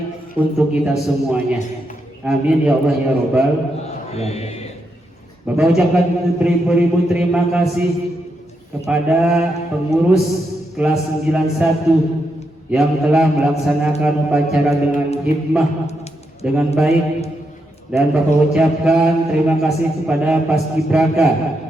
untuk kita semuanya. Amin ya Allah ya Rabbal alamin. Bapak ucapkan beribu-ribu terima kasih kepada pengurus kelas 91 yang telah melaksanakan upacara dengan hikmah, dengan baik, dan Bapak ucapkan terima kasih kepada Paskibraka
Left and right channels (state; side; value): normal; both; correlation 0.82